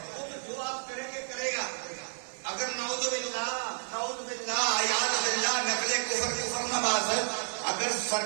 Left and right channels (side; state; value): left; silent; digital silence